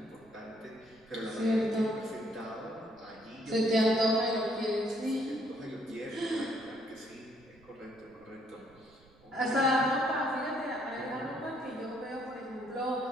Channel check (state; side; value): noise; right; rumble, 28 dB below the sound